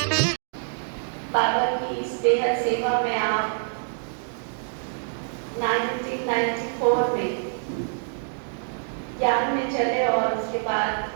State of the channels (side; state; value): left; silent; digital silence